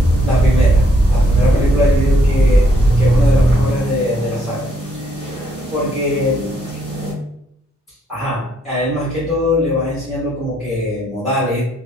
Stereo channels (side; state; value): both; normal; correlation 0.71